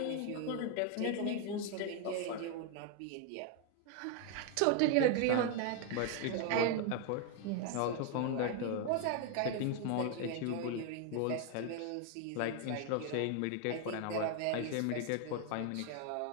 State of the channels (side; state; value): both; different; correlation 0.00